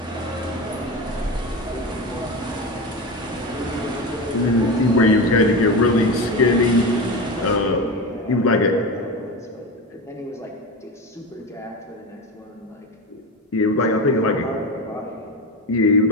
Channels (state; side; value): normal; both; correlation 0.22